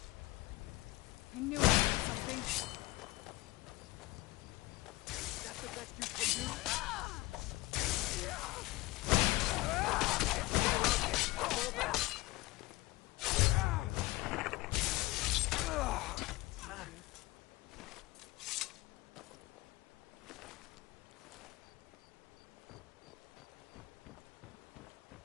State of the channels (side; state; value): right; quieter; 20.4 dB